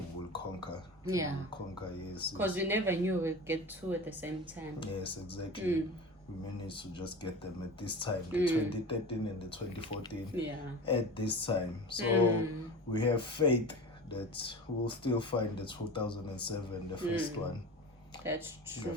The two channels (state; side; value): normal; both; correlation 0.32